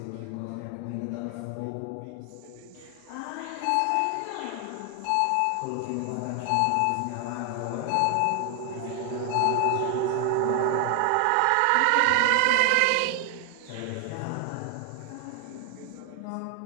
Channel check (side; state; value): both; different; correlation 0.00